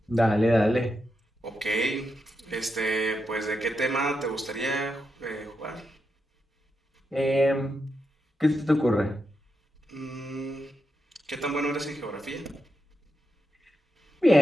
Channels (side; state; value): both; normal; correlation 0.85